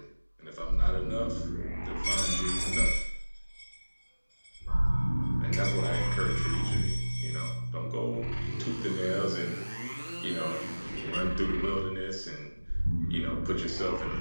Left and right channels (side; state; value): both; inverted; correlation -1.00